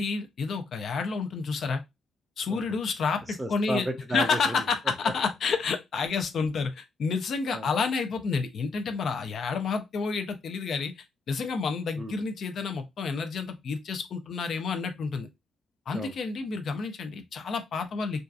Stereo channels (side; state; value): right; quieter; 4.2 dB